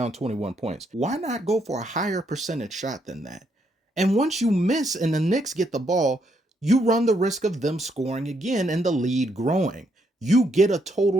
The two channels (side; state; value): both; normal; correlation 0.75